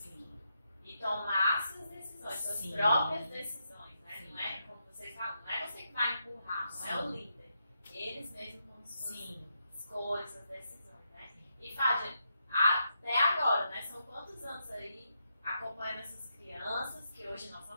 isso. E tomar suas decisões, suas Sim. próprias decisões, né? Sim. Não é como vocês falam, não é você que vai empurrar, não é o Sim. líder. Eles mesmos com suas Sim. escolhas, suas decisões, né? E Fábio, até agora, né? São quantos anos aí acompanhando essas crianças, que hoje não são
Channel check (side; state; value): both; inverted; correlation -0.82